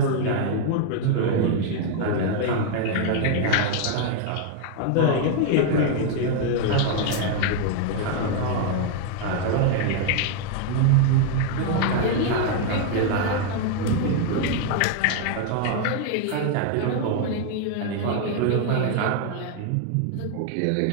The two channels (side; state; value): both; different; correlation 0.00